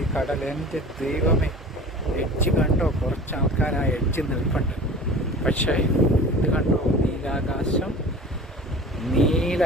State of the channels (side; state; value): both; normal; correlation 0.40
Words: കടൽ? എൻ്റെ ദൈവമേ, എഡ്ജ് കണ്ടോ? കുറച്ച് ആൾക്കാർ ആ എഡ്ജ് നിൽപ്പുണ്ട്. പക്ഷേ ഇത് കണ്ടോ? നീലാകാശം,